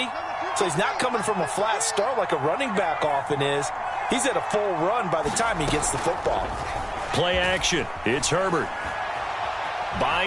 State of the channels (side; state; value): both; identical; correlation 1.00